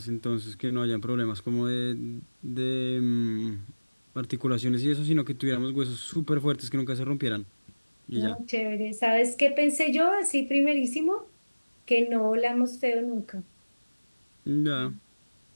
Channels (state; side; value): inverted; both; correlation -1.00